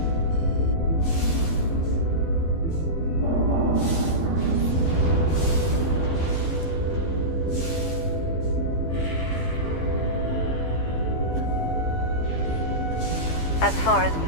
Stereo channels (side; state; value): right; late; 12 ms